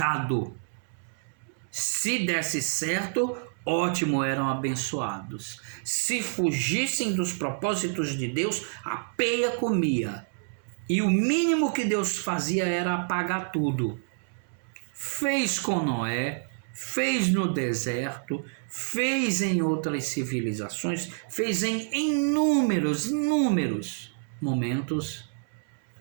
Se desse certo, ótimo, eram abençoados. Se fugissem dos propósitos de Deus, a peia comia. E o mínimo que Deus fazia era apagar tudo. Fez com Noé, fez no deserto, fez em outras civilizações, fez em inúmeros momentos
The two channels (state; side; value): silent; left; 59 dB below the other